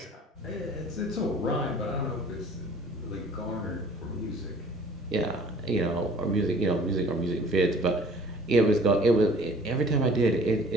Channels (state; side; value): normal; both; correlation 0.51